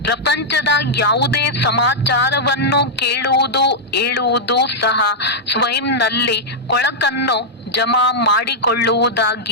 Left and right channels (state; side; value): normal; both; correlation -0.06